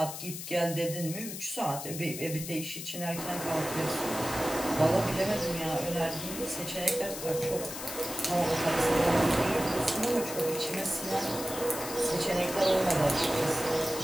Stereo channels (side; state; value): left; noise; hiss, 8 dB below the sound